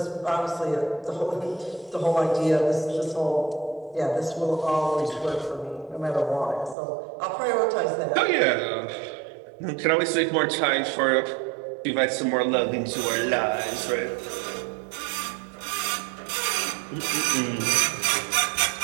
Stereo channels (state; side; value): drops out; left; at 6.8 s